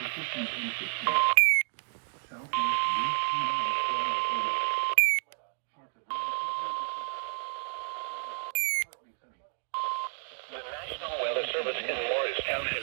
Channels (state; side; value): silent; left; 57 dB below the other